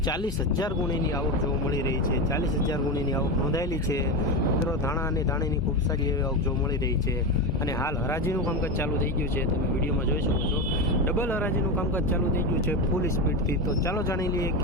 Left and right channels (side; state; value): both; normal; correlation 0.17